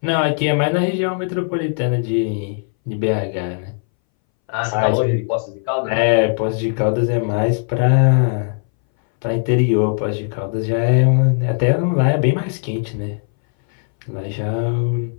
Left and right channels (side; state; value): right; silent; 63 dB below the other